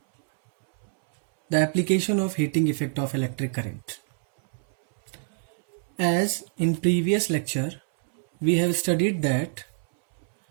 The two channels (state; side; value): silent; left; 61 dB below the other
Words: the application of heating effect of electric current. As in previous lecture, we have studied that